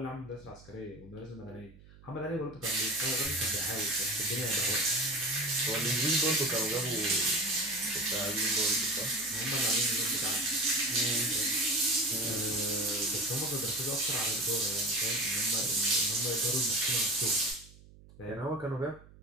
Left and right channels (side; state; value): right; noise; hum, 22 dB below the sound